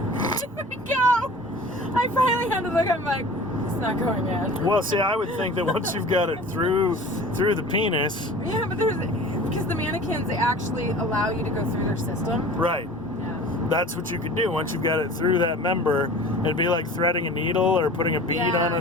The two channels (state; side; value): normal; both; correlation 0.41